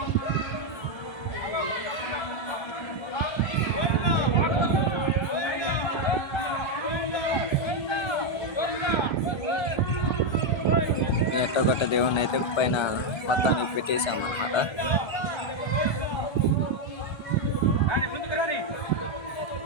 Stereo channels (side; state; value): right; late; 1.3 ms